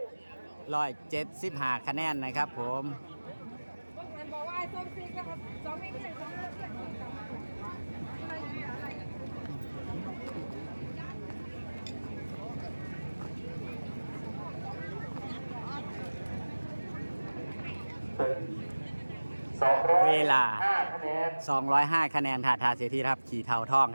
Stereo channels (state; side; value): inverted; both; correlation -1.00